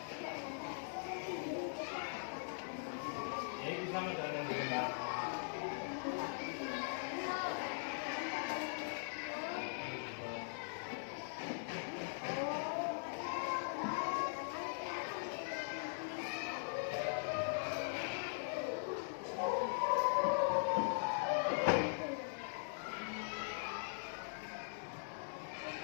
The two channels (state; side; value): silent; right; digital silence